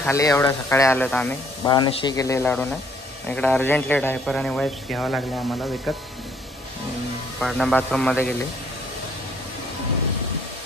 खाली. एवढ्या सकाळी आलो तर आम्ही. बाळाने शी केले लाडूने. इकडे अर्जंटली डायपर आणि वाईप्स घ्यावं लागले आम्हाला विकत. पाडणा बाथरूममध्ये गेले.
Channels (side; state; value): both; normal; correlation 0.64